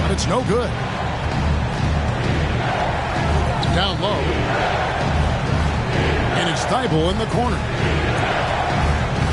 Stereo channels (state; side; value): identical; both; correlation 1.00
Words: it's no good. Down low. And it's Thibault in the corner.